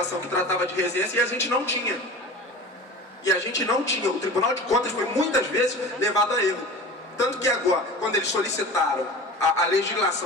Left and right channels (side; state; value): both; normal; correlation 0.36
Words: que tratava de regência e a gente não tinha. E a gente não tinha. O Tribunal de Contas foi muitas vezes levado a erro. Tanto que agora, quando eles solicitaram a